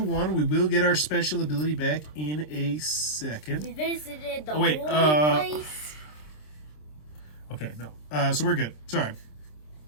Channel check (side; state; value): right; late; 26 ms